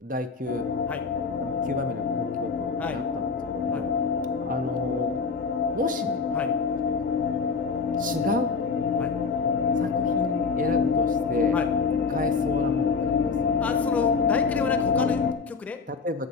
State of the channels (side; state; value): right; quieter; 5.0 dB